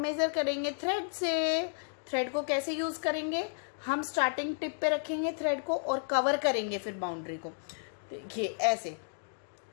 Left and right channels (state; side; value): silent; right; digital silence